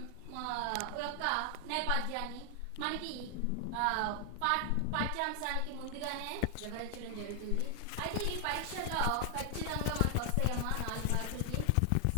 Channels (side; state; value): both; different; correlation 0.00